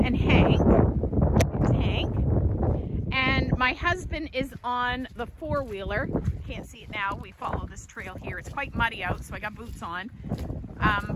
and Hank. It's Hank. And my husband is on the four-wheeler. Can't see it now. We follow this trail here. It's quite muddy out, so I got boots on.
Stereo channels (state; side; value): identical; both; correlation 1.00